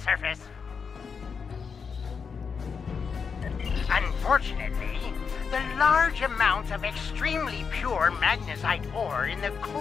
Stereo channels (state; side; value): quieter; right; 5.9 dB